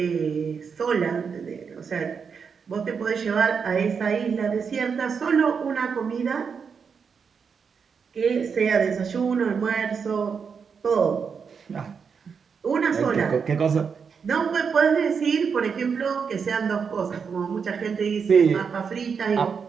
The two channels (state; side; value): quieter; left; 6.1 dB